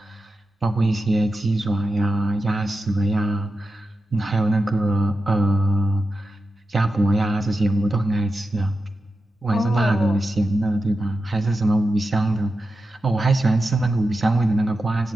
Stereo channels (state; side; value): normal; both; correlation 0.90